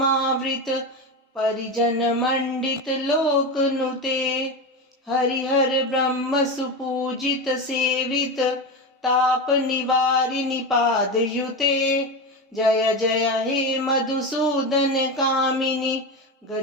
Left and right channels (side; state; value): both; normal; correlation 0.19